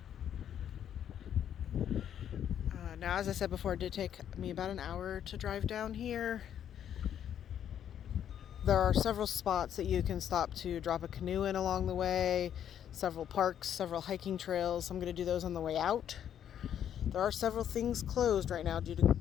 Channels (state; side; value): quieter; right; 9.7 dB